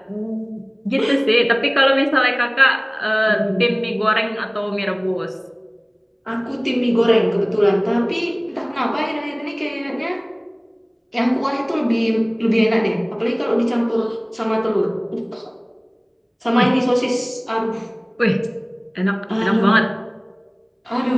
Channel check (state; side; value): identical; both; correlation 1.00